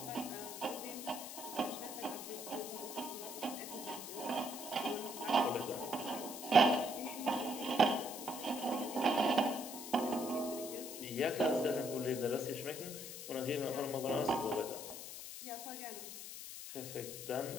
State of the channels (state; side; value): noise; left; hiss, 9 dB below the sound